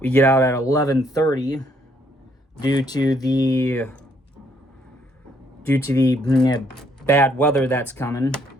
11:30 due to the bad weather that's coming,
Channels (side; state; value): both; normal; correlation 0.68